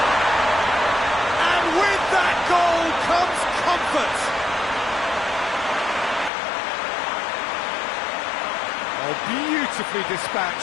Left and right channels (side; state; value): right; drops out; at 6.3 s